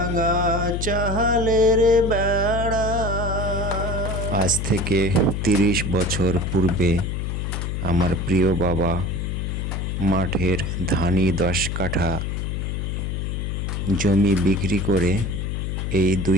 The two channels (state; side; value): noise; left; hum, 2 dB below the sound